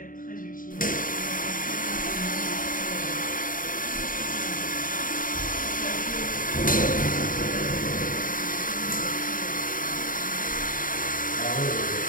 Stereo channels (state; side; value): late; right; 0.40 ms